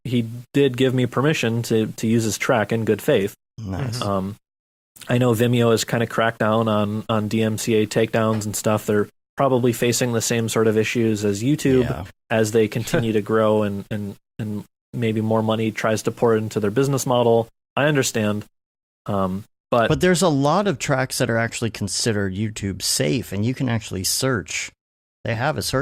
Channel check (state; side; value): identical; both; correlation 1.00